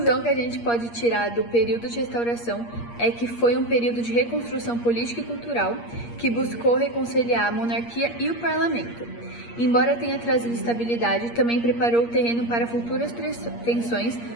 que a gente pode tirar do período de restauração é que foi um período de reconstrução política e cultural que buscou reconciliar a monarquia e o parlamento. Embora tenha trazido estabilidade, também preparou o terreno para futuras tensões,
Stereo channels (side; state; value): right; late; 8.5 ms